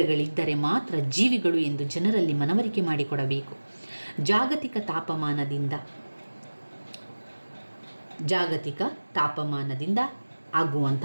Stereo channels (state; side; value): inverted; both; correlation -1.00